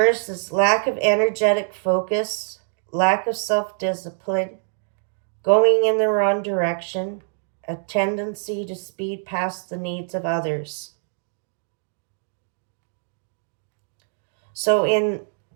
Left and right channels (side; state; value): left; silent; digital silence